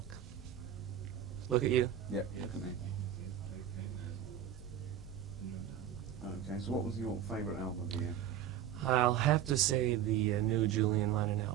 Look at you. Yep, look at me. Okay, so what was your favourite album of the year? I'll have to say the new Julian Lennon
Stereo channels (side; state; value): left; quieter; 10.0 dB